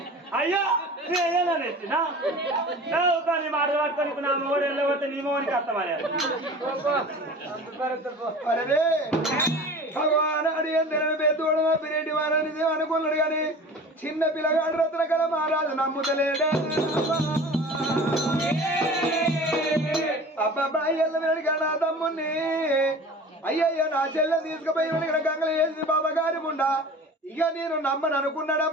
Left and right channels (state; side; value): normal; both; correlation 0.39